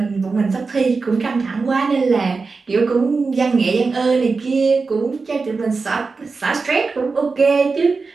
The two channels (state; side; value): quieter; left; 4.4 dB